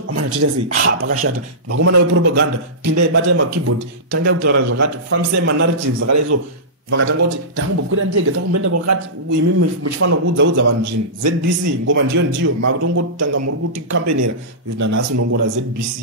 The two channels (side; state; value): both; normal; correlation -0.18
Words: amana toita sei pakashata vakomana vepropaganda pindai batai makeyboard tangai kutaura zvakati fambisai manarratives akadai so vakatanga kuti takumbokwira ndege takumboenda kwakati imi muchifanira kuudzaudza vanhu zvinhu ZBC ngoma ndiyo makutongotanga muri kuti kampenera nanhasi unongora